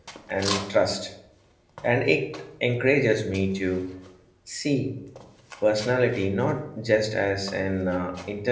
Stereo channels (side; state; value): both; identical; correlation 1.00